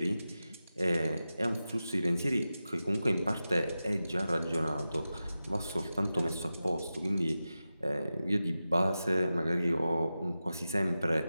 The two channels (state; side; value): inverted; both; correlation -0.93